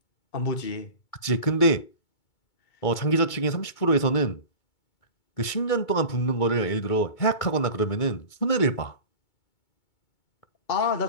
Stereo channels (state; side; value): late; right; 2.2 ms